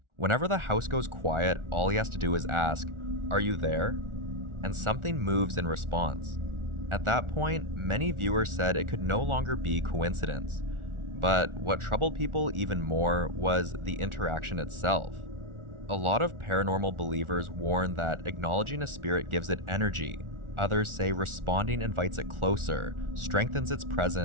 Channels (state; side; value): late; left; 1.4 ms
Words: Whenever the house goes quiet, all he has to do is ask, "Are you there?" And something moves in response. At that point, many viewers said it could no longer be coincidence. But what troubled people even more was the interaction itself. A lot of paranormal believers warn that acknowledging a spirit gives it energy. Others say responding invites it closer, strengthens its